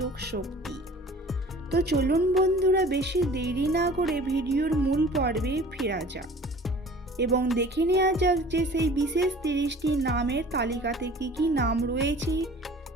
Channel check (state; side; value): normal; both; correlation 0.46